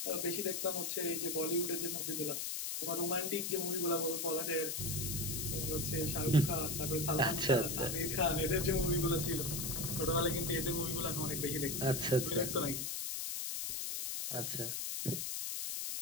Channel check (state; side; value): noise; left; hiss, 2 dB below the sound